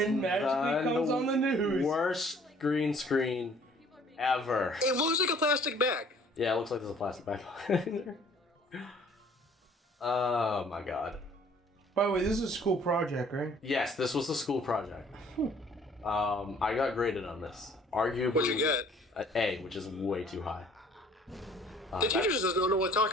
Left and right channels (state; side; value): normal; both; correlation 0.56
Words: magically comes on the news. Worst green screen ever. It looks like a plastic bag. Yeah, it looks like there's a plastic bag behind there. Oh my god. By the way, this is a school project, right? Yes, this was a school project. I got graded on this. Arguably, What'd you get? An A, which is way too high. The teacher just doesn't know what they're